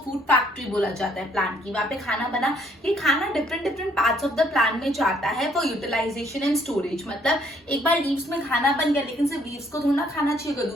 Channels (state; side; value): normal; both; correlation 0.65